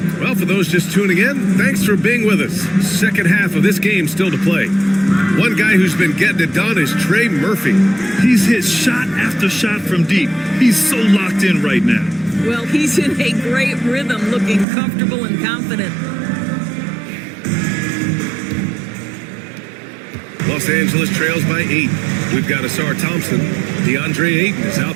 Well, for those just tuning in, thanks for being with us. Second half of this game still to play. One guy who's been getting it done is Trey Murphy. He's hit shot after shot from deep. He's so locked in right now. Well, he's in a great rhythm, looking comfortable and confident. Los Angeles trails by 8. We've got Asar Thompson. DeAndre Ayton is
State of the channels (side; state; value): left; drops out; at 14.7 s